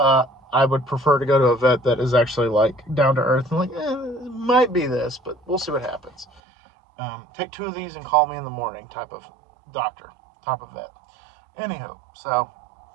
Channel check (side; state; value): left; drops out; at 6.4 s